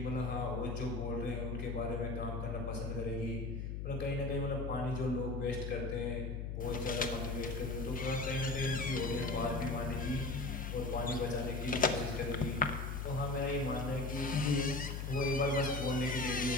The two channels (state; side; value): noise; left; hum, 4 dB below the sound